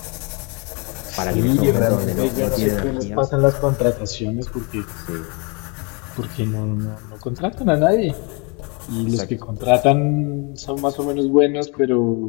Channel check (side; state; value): right; quieter; 31.9 dB